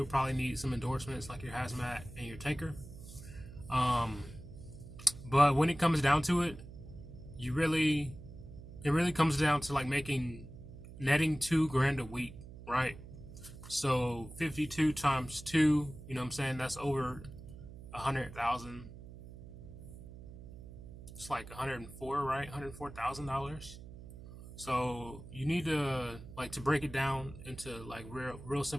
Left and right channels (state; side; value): noise; right; hum, 15 dB below the sound